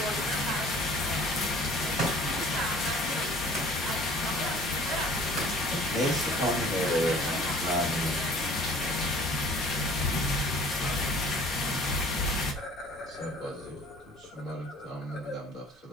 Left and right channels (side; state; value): both; normal; correlation 0.50